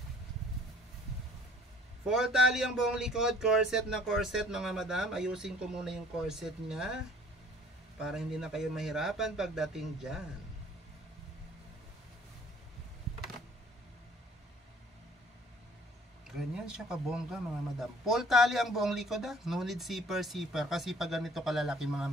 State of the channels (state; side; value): normal; both; correlation 0.54